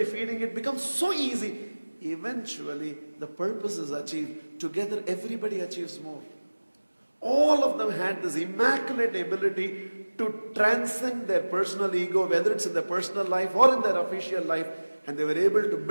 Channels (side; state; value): both; inverted; correlation -1.00